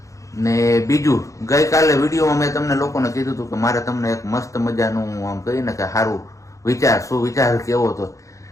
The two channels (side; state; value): right; late; 0.15 ms